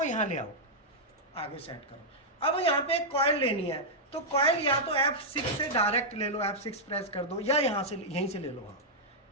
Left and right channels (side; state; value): both; normal; correlation -0.07